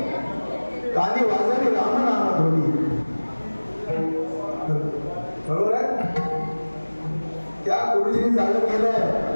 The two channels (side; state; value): both; inverted; correlation -1.00